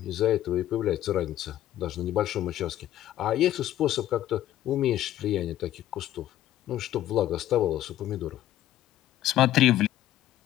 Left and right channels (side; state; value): right; quieter; 13.1 dB